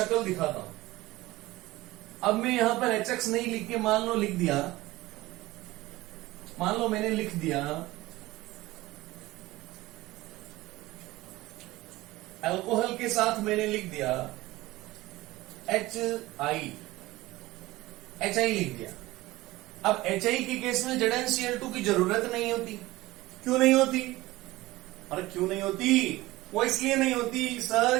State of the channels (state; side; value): quieter; left; 18.7 dB